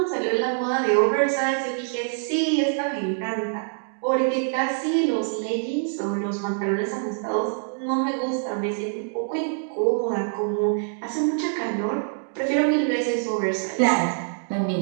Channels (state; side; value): silent; left; digital silence